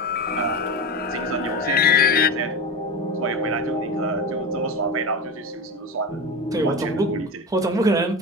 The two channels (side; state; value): both; normal; correlation 0.23